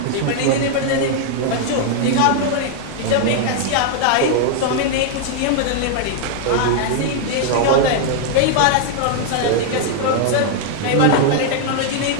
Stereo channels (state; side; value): different; both; correlation 0.00